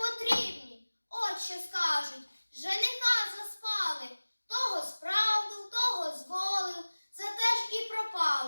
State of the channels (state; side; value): inverted; both; correlation -1.00